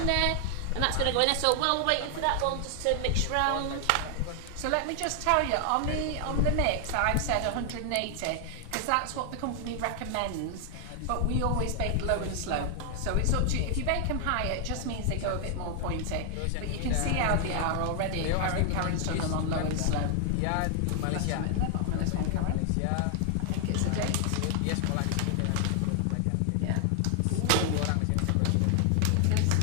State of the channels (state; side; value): different; both; correlation 0.00